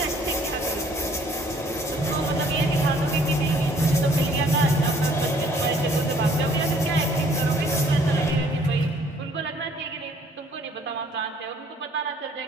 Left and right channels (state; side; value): normal; both; correlation 0.60